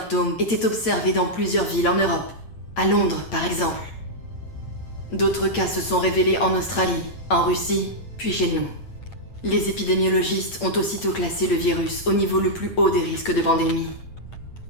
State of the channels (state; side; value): late; right; 8.7 ms